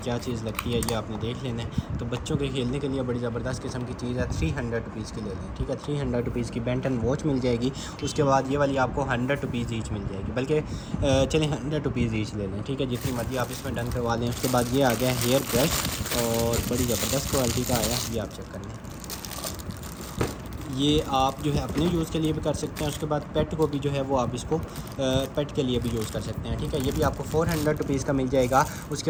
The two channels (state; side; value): identical; both; correlation 1.00